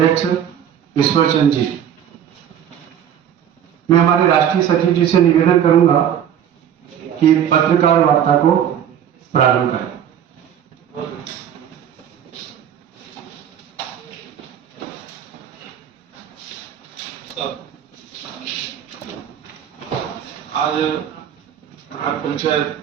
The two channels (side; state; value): left; quieter; 9.5 dB